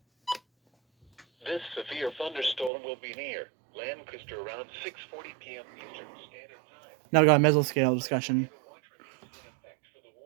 This severe thunderstorm will be near Lancaster around 6:40 p.m. Eastern Standard Time. now we got a mesoscale discussion. Watch remains in effect for the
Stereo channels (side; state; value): left; drops out; at 2.7 s